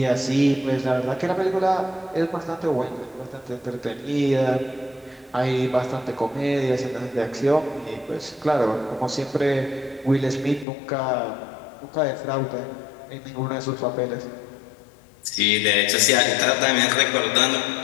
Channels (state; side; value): drops out; right; at 10.7 s